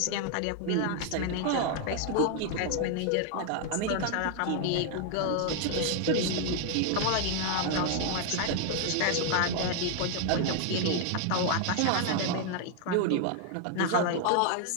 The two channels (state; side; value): different; both; correlation 0.00